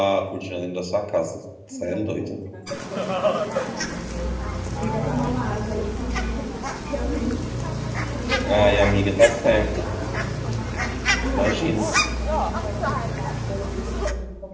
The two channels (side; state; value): both; identical; correlation 1.00